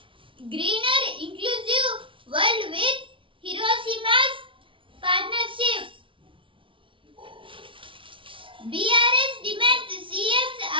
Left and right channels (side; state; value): left; late; 0.25 ms